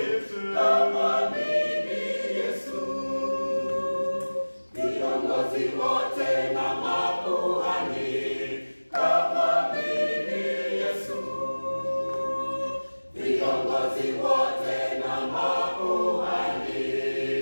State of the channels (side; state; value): both; inverted; correlation -1.00